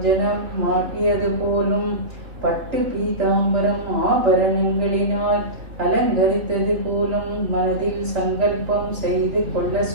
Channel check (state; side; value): late; left; 3.1 ms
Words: மாட்டியது போலும் பட்டு பீதாம்பரம் ஆபரணங்களினால் அலங்கரித்தது போலும் மனதில் சங்கல்பம் செய்து கொள்ள